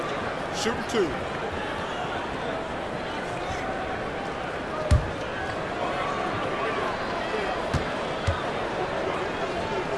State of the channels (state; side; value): identical; both; correlation 1.00